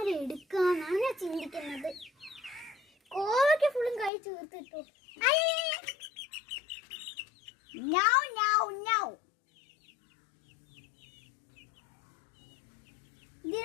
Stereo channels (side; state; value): right; drops out; at 4.1 s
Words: ഞാൻ ചിന്തിക്കുന്നത്. കോവയ്ക്ക് ഫുള്ളും കൈ ചേർത്തിട്ടു.